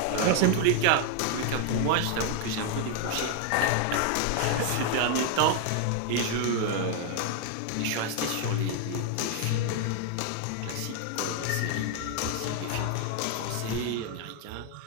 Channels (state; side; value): different; both; correlation 0.00